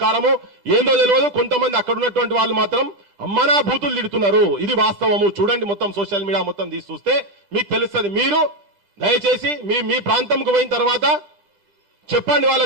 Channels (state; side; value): late; left; 10 ms